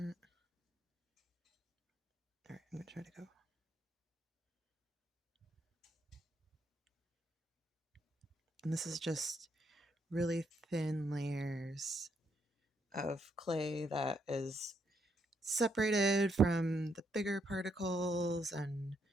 All right, I'm gonna try to go. And this is just really thin layers of clay that is separated from the bigger particles, and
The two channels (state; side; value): normal; both; correlation 0.76